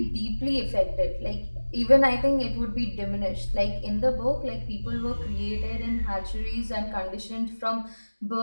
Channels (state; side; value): inverted; both; correlation -1.00